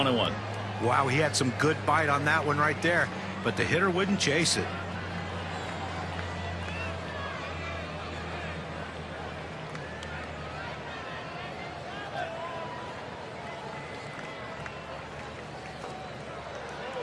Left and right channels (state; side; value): identical; both; correlation 1.00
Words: Wow, he had some good bite on that one right there, but the hitter wouldn't chase it.